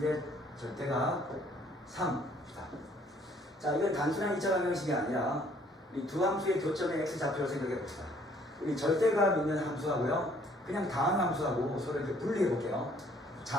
절대값 3. 자, 이건 단순한 2차 방정식이 아니라 이 두 함수의 교점의 x 좌표를 생각해 봅시다. 우리 절대값 있는 함수하고요, 그냥 다항 함수하고 서로 이렇게 분리해 볼게요.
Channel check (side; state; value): both; normal; correlation 0.61